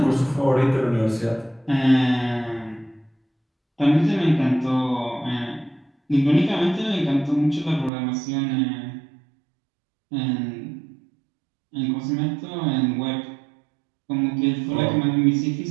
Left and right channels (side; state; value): left; drops out; at 7.9 s